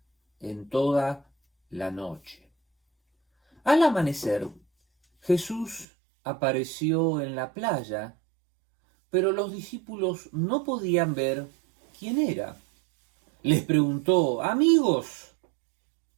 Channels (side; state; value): left; drops out; at 5.9 s